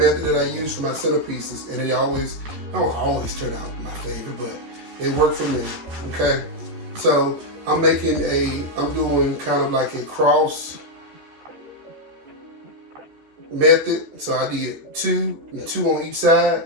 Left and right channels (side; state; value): left; late; 14 ms